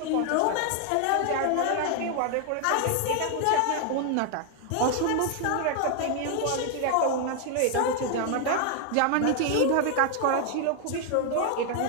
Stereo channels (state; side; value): different; both; correlation 0.00